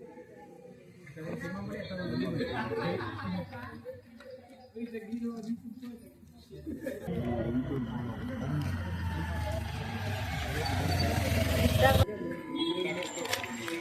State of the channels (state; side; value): identical; both; correlation 1.00